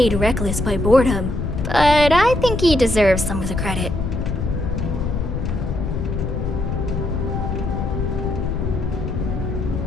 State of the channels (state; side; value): noise; left; rumble, 2 dB below the sound